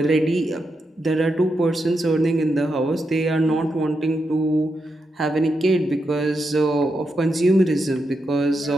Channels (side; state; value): both; normal; correlation 0.85